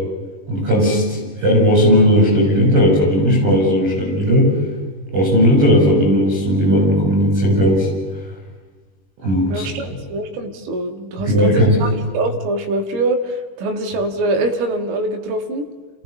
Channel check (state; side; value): late; left; 21 ms